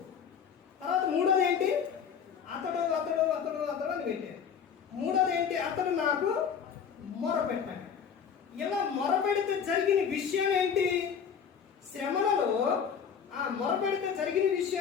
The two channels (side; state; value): right; quieter; 7.3 dB